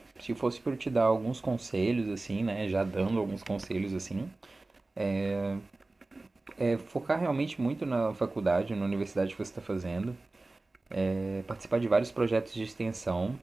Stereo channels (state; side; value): quieter; left; 3.1 dB